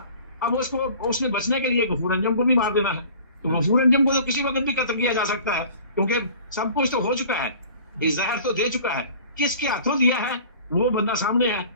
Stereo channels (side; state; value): both; inverted; correlation -0.46